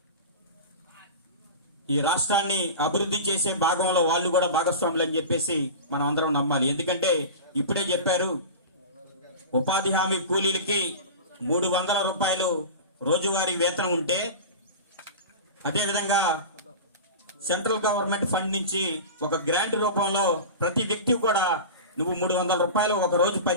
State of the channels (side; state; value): both; inverted; correlation -0.30